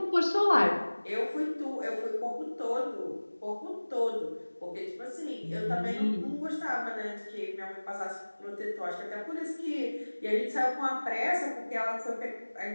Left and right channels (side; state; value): both; inverted; correlation -1.00